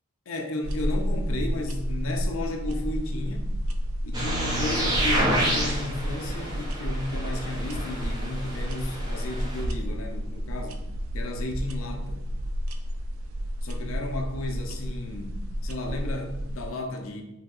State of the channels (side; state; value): both; normal; correlation 0.64